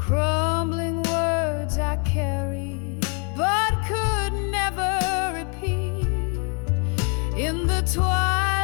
words I carry but could never repeat. In the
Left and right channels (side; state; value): right; quieter; 37.0 dB